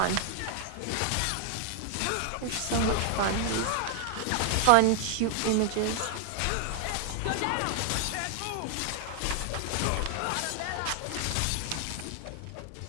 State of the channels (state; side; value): different; both; correlation 0.00